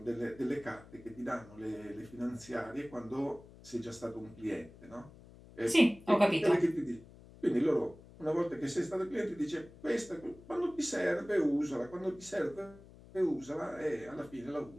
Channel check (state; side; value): noise; left; hum, 20 dB below the sound